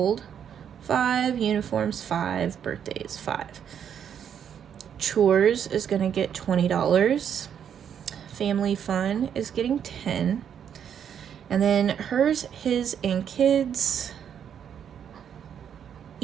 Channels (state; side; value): quieter; left; 8.5 dB